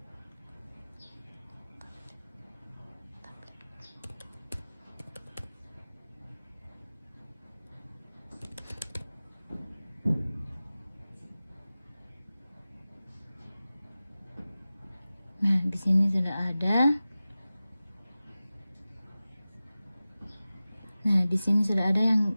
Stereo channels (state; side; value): inverted; both; correlation -0.96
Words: Nah, di sini sudah ada. Nah, di sini sudah ada yang